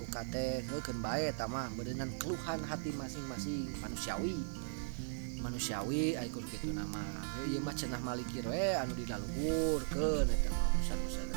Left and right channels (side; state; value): left; silent; digital silence